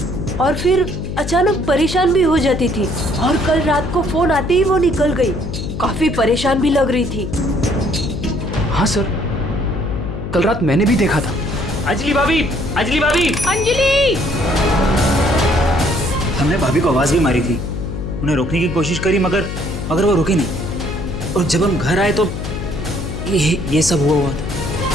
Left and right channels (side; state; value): left; noise; hum, 6 dB below the sound